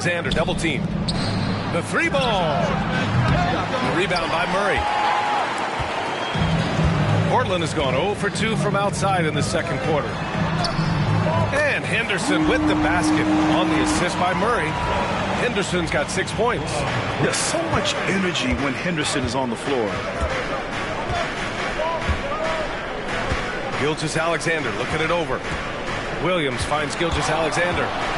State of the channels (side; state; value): both; identical; correlation 1.00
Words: double team. The 3 ball. The rebound by Murray. Portland has gone 0 for 2 from outside in the second quarter. And Henderson with the basket on the assist by Murray. Henderson's got 6 points. There's so much energy when Henderson is on the floor. Gilgeous-Alexander looking it over. Williams finds Gilgeous-Alexander.